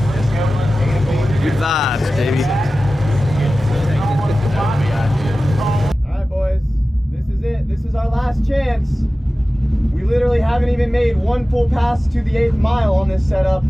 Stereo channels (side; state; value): both; normal; correlation 0.95